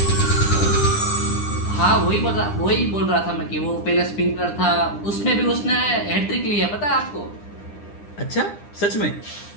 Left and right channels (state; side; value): late; right; 9.9 ms